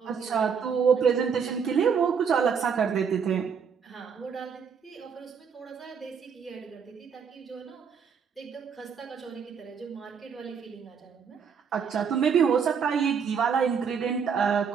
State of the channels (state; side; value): quieter; left; 6.6 dB